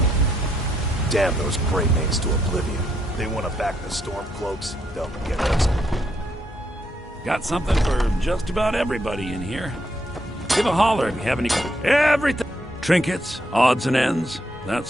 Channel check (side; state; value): both; normal; correlation 0.76